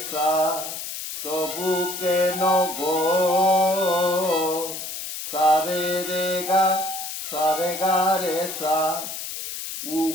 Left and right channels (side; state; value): left; noise; hiss, 7 dB below the sound